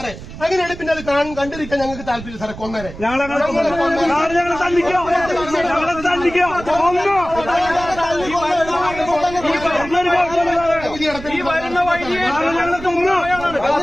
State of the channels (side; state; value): right; noise; rumble, 13 dB below the sound